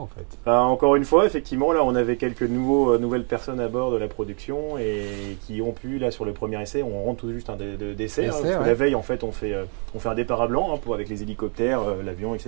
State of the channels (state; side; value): quieter; left; 38.6 dB